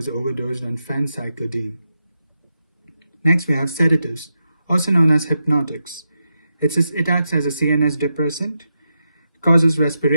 overdosed on phencyclidine. Next, we have sedatives, also known as hypnotics. It acts as a CNS depressant, causes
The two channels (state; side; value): inverted; both; correlation -0.87